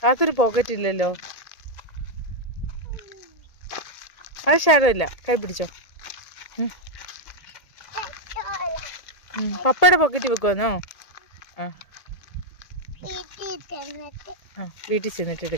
അതൊരു പോക്കറ്റ് ഇല്ലല്ലോ. അത് സാരമില്ല, കൈ പിടിച്ചോ. പപ്പയുടെ പോക്കറ്റ് വെക്കുവാന്നോ? വീട്ടിൽ ചെന്നിട്ട്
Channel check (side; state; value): right; late; 1.8 ms